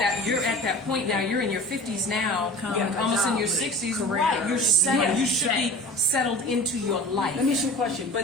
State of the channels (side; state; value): both; normal; correlation 0.38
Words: that point now. You're in your 50s now, almost in your 60s. Right. You're settled. You should be settled into your life. Let me ask you a question.